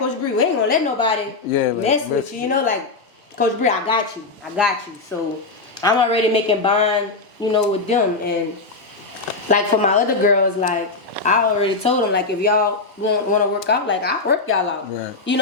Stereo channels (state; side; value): quieter; right; 3.7 dB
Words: Bree, we ain't gonna let nobody mess with you. You know, like Coach Bree, I got you. So I'm already making bond, you know, with them. And like for my other girls, like I already told them, like if y'all want to work out, like I work y'all out. Right. You